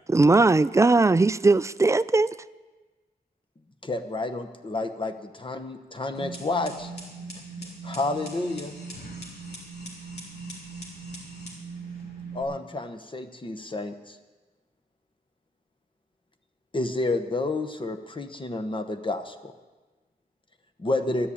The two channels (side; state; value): both; normal; correlation 0.79